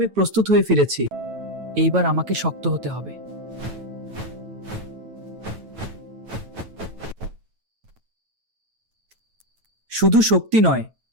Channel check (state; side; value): late; left; 9.1 ms